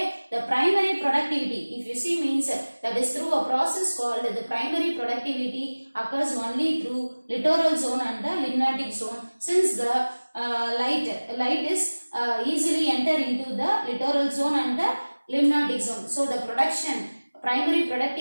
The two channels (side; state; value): both; inverted; correlation -1.00